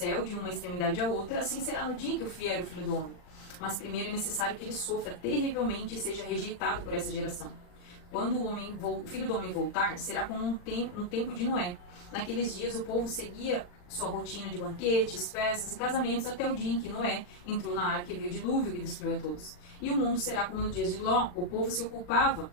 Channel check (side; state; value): right; late; 40 ms